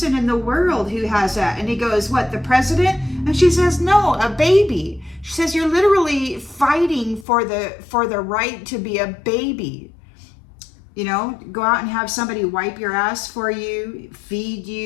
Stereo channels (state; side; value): drops out; right; at 7.2 s